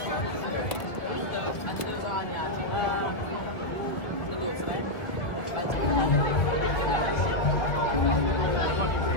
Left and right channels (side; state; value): right; late; 1.5 ms